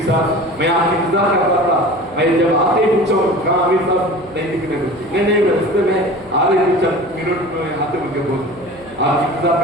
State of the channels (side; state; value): right; noise; hum, 24 dB below the sound